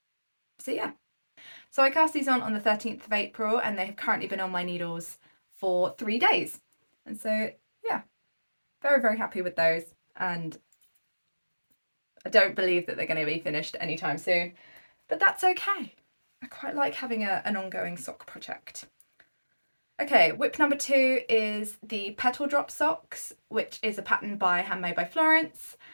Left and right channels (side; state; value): both; inverted; correlation -1.00